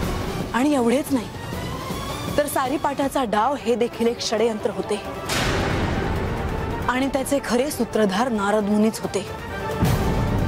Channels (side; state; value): both; identical; correlation 1.00